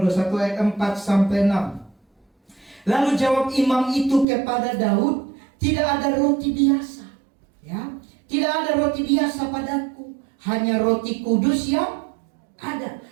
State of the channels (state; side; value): drops out; left; at 4.2 s